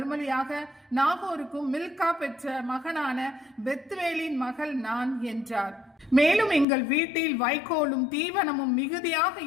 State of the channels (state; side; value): drops out; right; at 6.7 s